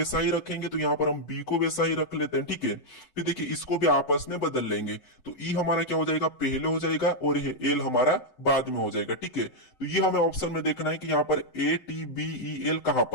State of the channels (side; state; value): right; late; 7.9 ms